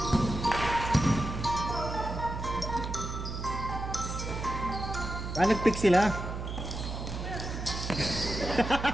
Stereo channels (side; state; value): right; noise; hum, 6 dB below the sound